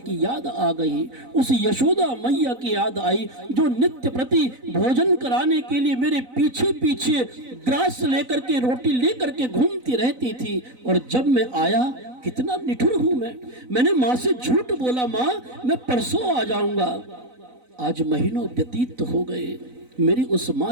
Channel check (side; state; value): left; late; 4.0 ms